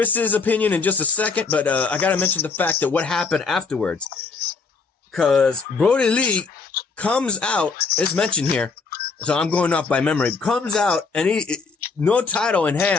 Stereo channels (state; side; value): quieter; right; 4.6 dB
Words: opinion in just a second, but I got to mention the fact that what happened afterwards. Because Brodie Lee comes out, it's mentioned here, so I'm going off by memory, comes out, and he, no title in